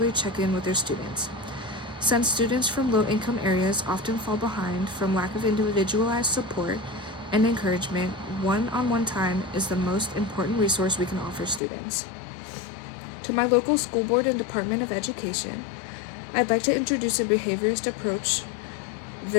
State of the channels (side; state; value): right; drops out; at 11.6 s